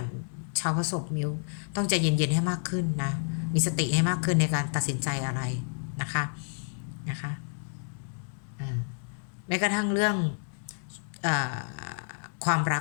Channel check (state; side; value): silent; right; 58 dB below the other